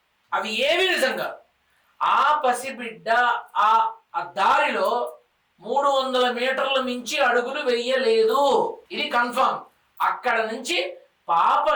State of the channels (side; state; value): both; identical; correlation 1.00